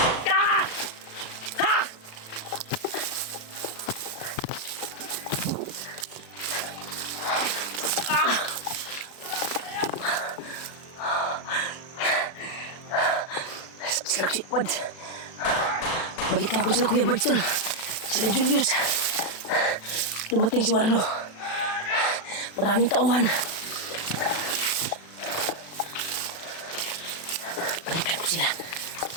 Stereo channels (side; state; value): right; late; 36 ms